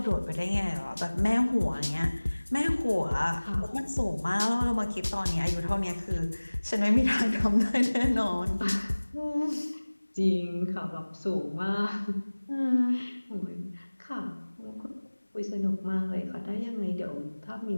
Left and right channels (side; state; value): both; inverted; correlation -1.00